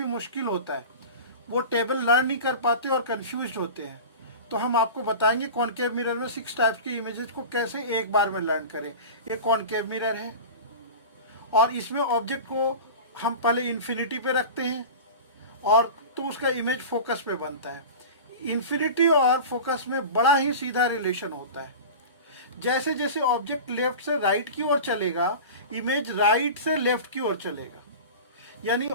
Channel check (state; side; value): inverted; both; correlation -0.32